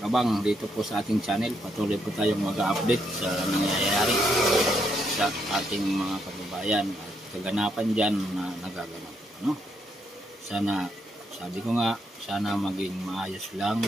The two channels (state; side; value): normal; both; correlation 0.77